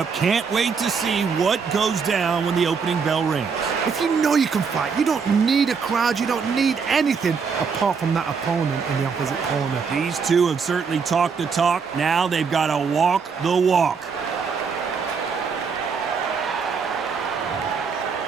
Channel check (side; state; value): left; quieter; 5.7 dB